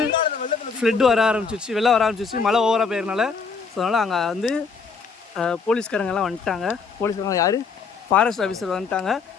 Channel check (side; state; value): right; quieter; 5.1 dB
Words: ஃப்ளட் வர ஆரம்பிச்சிச்சு, வெள்ளம் வர ஆரம்பிச்சிச்சு, மழை ஓவராக போயிருந்தால. ஸோ அதனால் அங்கே வந்து போலீஸ்காரங்கெல்லாம் வந்துட்டாங்க. போலீஸ்காரங்க யார், ஃபாரஸ்ட் ஆஃபீஸர் வந்துட்டாங்க.